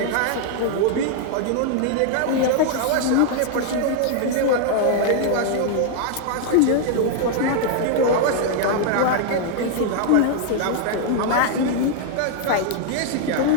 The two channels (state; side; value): different; both; correlation 0.00